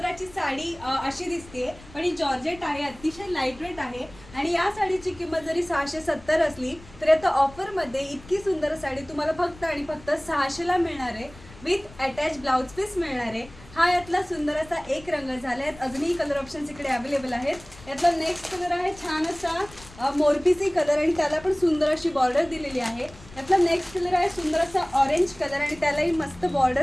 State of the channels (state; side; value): noise; left; rumble, 20 dB below the sound